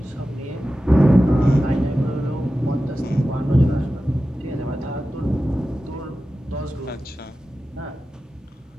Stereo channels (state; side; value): normal; both; correlation 0.94